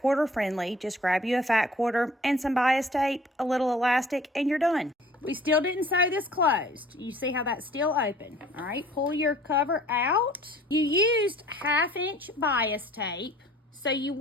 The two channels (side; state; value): both; normal; correlation 0.52